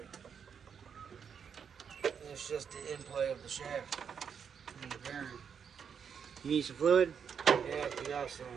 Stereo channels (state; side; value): quieter; left; 7.1 dB